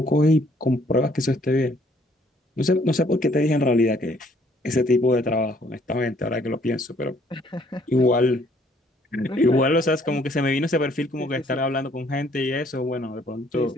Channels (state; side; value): normal; both; correlation 0.63